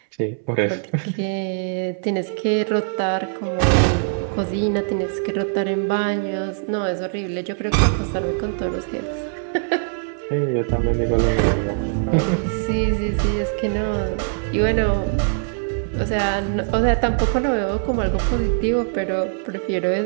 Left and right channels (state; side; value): silent; left; 64 dB below the other